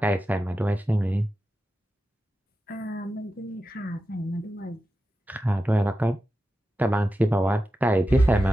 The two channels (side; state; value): both; normal; correlation 0.91